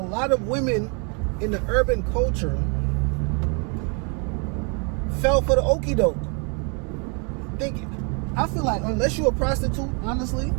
lot of women in the urban culture fell for the okie doke. I feel like unless you're a prostitute, honestly,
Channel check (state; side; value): quieter; left; 35.7 dB